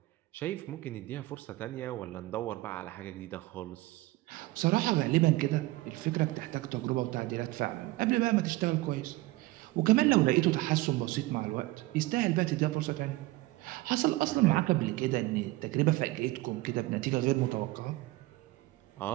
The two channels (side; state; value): left; quieter; 19.5 dB